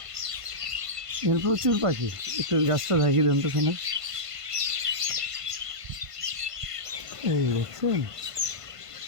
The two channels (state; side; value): late; left; 1.5 ms